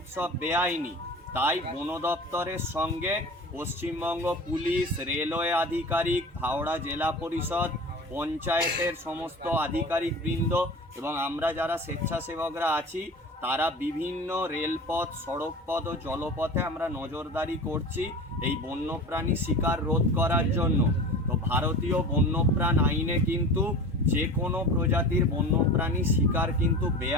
বেআইনি। তাই বন দপ্তরের সঙ্গে পশ্চিমবঙ্গ পুলিশ, রেলওয়ে আধিকারিক, হাওড়া জেলা পরিষদ, পঞ্চায়েতের সমস্ত আধিকারিকবৃন্দ এবং আমরা যারা স্বেচ্ছাসেবকরা আছি, তারা বিভিন্ন রেলপথ, সড়কপথ ও জলপথে আমরা নজরদারি করছি এই বন্যপ্রাণী শিকার রোধ করার জন্য। তো ভারতীয় বন্যপ্রাণ আইনে কিন্তু যে কোনো প্রজাতির বন্যপ্রাণী শিকার কিন্তু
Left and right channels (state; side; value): normal; both; correlation 0.35